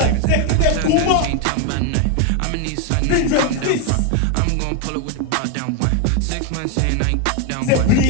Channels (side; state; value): both; different; correlation 0.01